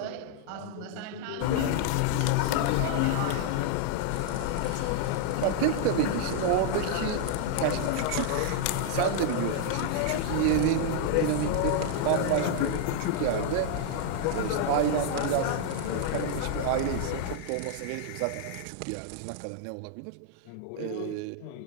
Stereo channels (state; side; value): different; both; correlation 0.00